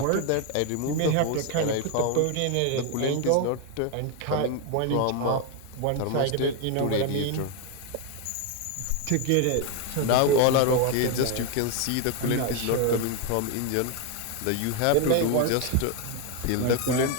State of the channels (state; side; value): different; both; correlation 0.01